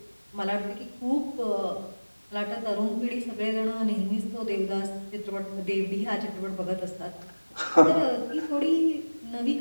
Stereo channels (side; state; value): both; inverted; correlation -1.00